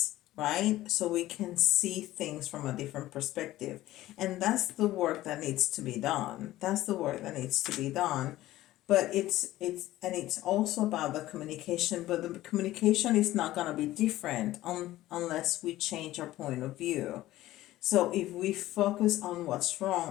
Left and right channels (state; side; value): quieter; right; 15.7 dB